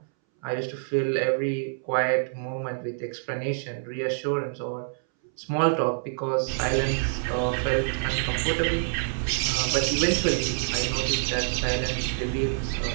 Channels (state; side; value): silent; left; 60 dB below the other